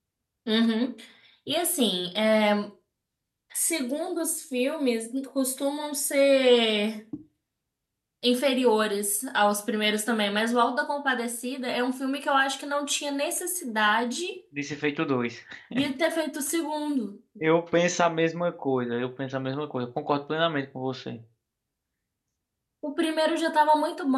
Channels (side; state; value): both; identical; correlation 1.00